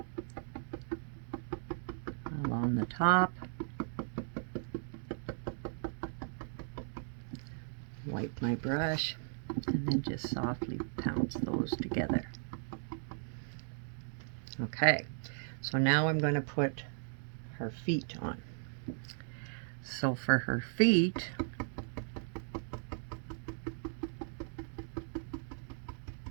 along the top, wipe my brush, and then just softly pounce those together. Okay, so now I'm going to put her feet on. So for her feet,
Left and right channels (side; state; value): left; silent; digital silence